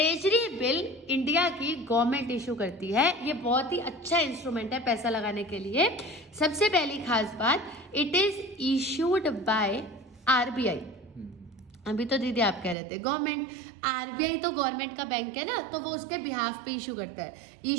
bill India की गवर्नमेंट इशू करती है। ये बहुत ही अच्छा इंस्ट्रूमेंट है पैसा लगाने के लिए। सबसे पहली खास बात, it is issued by RBI. अभी तो दीदी आप कह रहे थे गवर्नमेंट, आरबीआई तो गवर्नमेंट का बैंक है ना, तो वो उसके बिहाफ पे इशू करता है।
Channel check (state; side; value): drops out; left; at 12.8 s